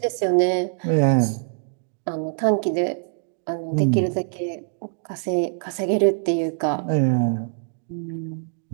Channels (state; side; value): silent; left; digital silence